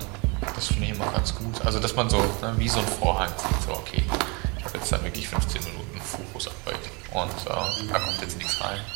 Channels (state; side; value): quieter; left; 30.0 dB